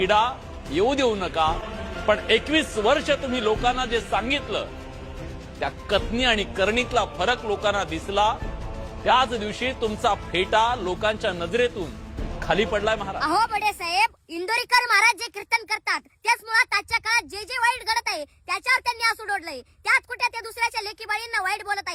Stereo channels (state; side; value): identical; both; correlation 1.00